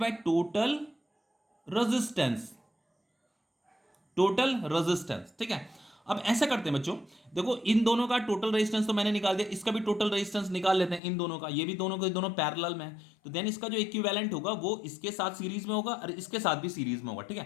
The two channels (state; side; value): drops out; right; at 11.0 s